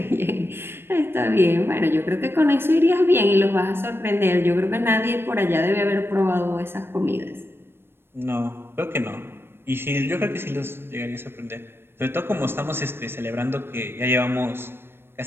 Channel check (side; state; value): left; late; 0.11 ms